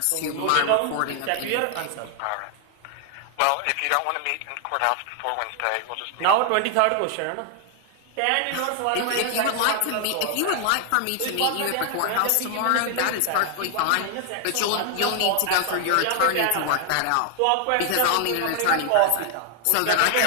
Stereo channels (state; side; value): different; both; correlation 0.00